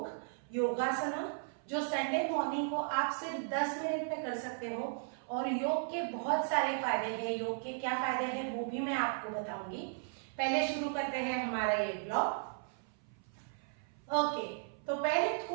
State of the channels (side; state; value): left; silent; 54 dB below the other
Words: योगासन, जो संडे मॉर्निंग को आप सिर्फ 10 मिनट में कर सकते हो। और योग के बहुत सारे फायदे हैं। योग के क्या फायदे हैं वो भी मैं आपको बताऊंगी। पहले शुरू करते हैं हमारा ये ब्लॉग। ओके, तो पहले